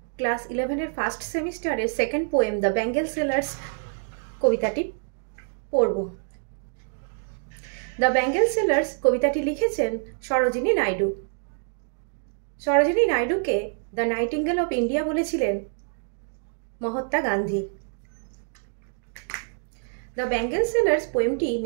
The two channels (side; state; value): left; silent; digital silence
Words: class 11 first সেমিস্টারের second poem the bangle sellers কবিতাটি পড়ব। দ্য বেঙ্গল সেলার্স কবিতাটি লিখেছেন সরোজিনী নাইডু। সরোজিনী নাইডুকে দ্য নাইটিঙ্গেল অফ ইন্ডিয়া বলেছিলেন Mahatma Gandhi. The bangle sellers পোয়েমটি